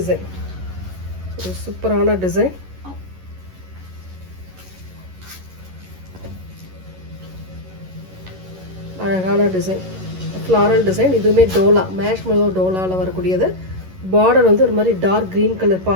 ஒரு சூப்பரான டிசைன். அழகான டிசைன், ஃப்ளாரல் டிசைன். இதுவுமே டோலா, மேஷ் மெலோ டோலாவில் வரக்கூடியது. பார்டர் வந்து ஒரு மாதிரி டார்க் க்ரீன் கலர்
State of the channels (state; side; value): late; left; 11 ms